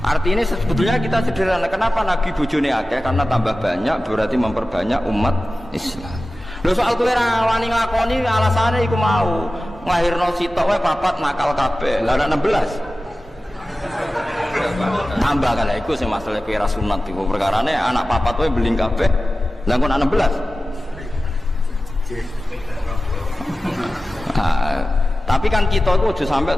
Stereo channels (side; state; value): both; normal; correlation 0.95